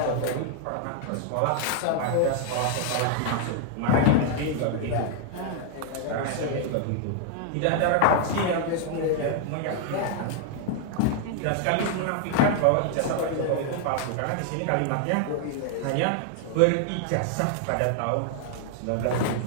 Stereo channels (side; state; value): both; different; correlation 0.00